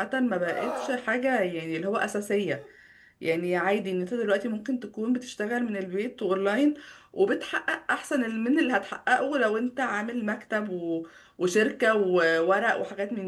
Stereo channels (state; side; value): identical; both; correlation 1.00